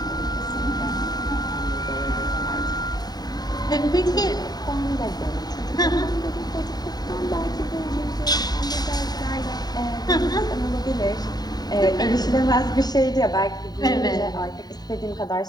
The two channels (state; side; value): late; right; 0.19 ms